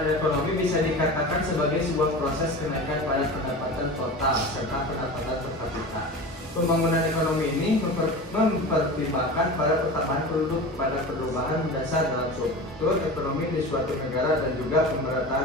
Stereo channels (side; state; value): both; normal; correlation 0.32